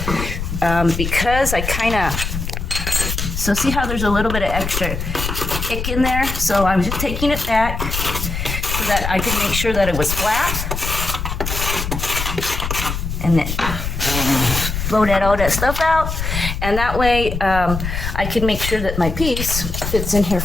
because I kind of, so see how there's a little bit of extra kick in there? So I'm just taking it back so that I can make sure that it was flat. And then blow all that stuff out. And that way I can make sure that my piece fits in here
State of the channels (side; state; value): left; noise; rumble, 4 dB below the sound